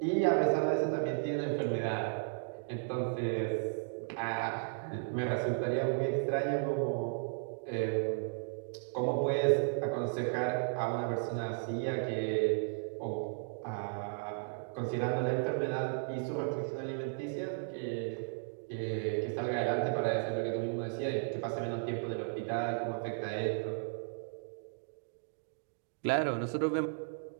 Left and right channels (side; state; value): left; silent; digital silence